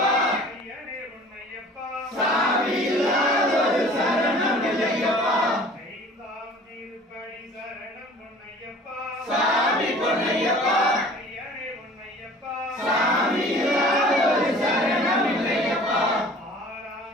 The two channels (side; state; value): both; normal; correlation 0.47